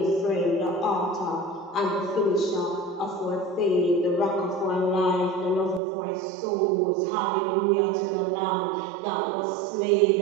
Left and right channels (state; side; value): drops out; left; at 5.8 s